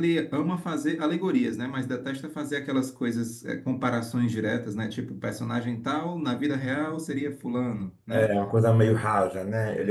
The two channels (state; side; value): identical; both; correlation 1.00